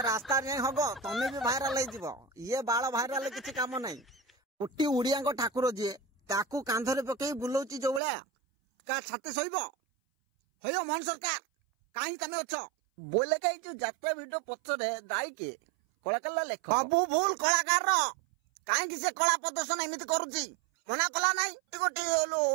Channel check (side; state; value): left; drops out; at 8.0 s